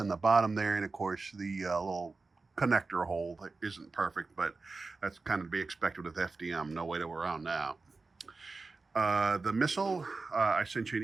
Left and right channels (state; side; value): quieter; left; 3.9 dB